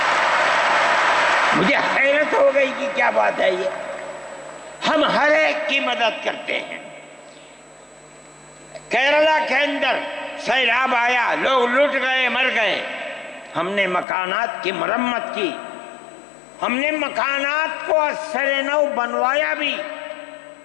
مجھے حیرت ہو گئی کہ کیا بات ہے یہ. ہم ہر ایک کی مدد کرتے ہیں. کیرلا کے اندر سیلاب آیا, لوگ لٹ گئے, مر گئے. ہم نے مکانات کی مرمت کی, ہم نے مکانات کو اثر نو بنوایا بھی,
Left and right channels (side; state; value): right; drops out; at 14.1 s